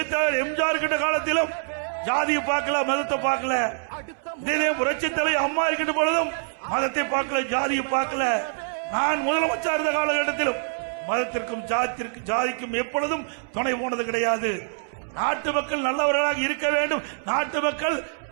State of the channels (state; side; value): silent; left; 62 dB below the other